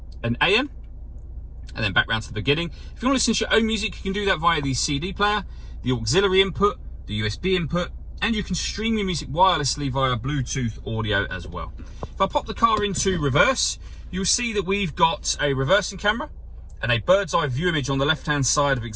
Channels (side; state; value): both; identical; correlation 1.00